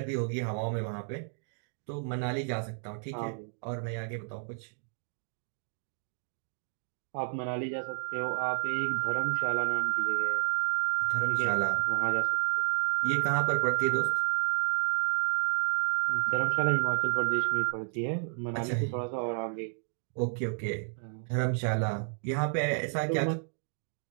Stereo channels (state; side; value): silent; left; 57 dB below the other